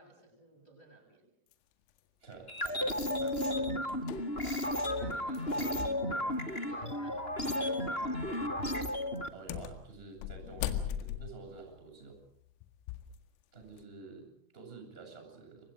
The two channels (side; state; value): right; late; 2.9 ms